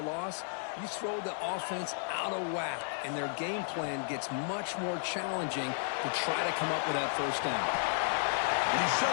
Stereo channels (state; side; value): silent; right; 56 dB below the other